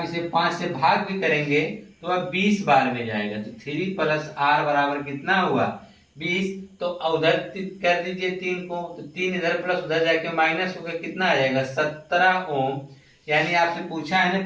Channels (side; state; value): both; identical; correlation 1.00